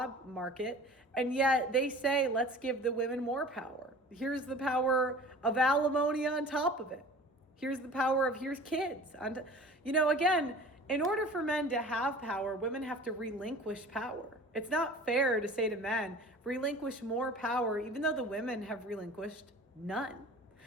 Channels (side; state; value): both; normal; correlation 0.42